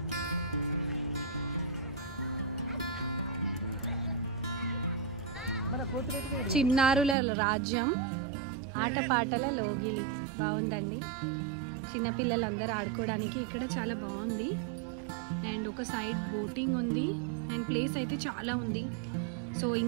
చిన్నారుల రాజ్యం, ఆటపాటల లోగిలి. బాగుందండి. చిన్నపిల్లలందరూ ఆడుకోవడానికి ఇక్కడ చాలా బాగుంది. అండ్ ఒక సైడ్ బోటింగ్ ఉంది. అండ్ ప్లేస్ అయితే చాలా ఉంది. సో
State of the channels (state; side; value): drops out; left; at 7.2 s